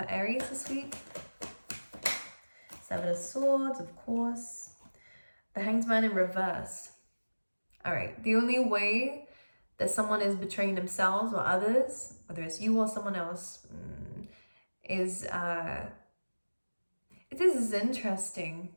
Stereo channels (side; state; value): both; inverted; correlation -1.00